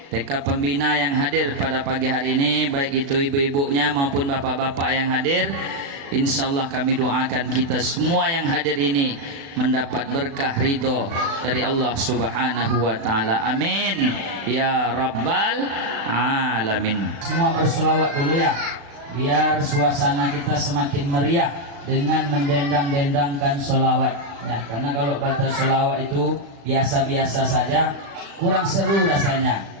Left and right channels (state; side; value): late; left; 36 ms